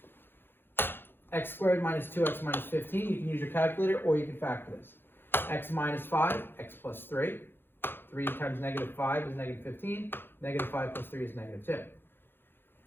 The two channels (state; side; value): late; right; 0.10 ms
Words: x squared minus 2x minus 15, you can use your calculator or you can factor this. X minus 5, x plus 3. 3 times negative 5 is negative 15. Negative 5 plus 3 is negative